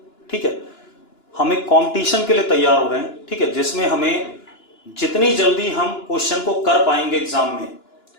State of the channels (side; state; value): right; late; 2.9 ms